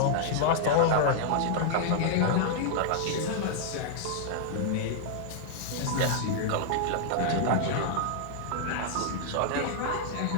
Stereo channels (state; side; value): different; both; correlation -0.01